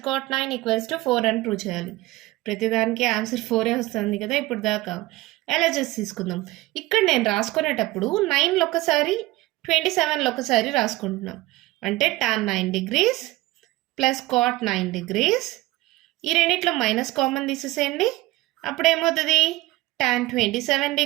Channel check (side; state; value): left; quieter; 18.9 dB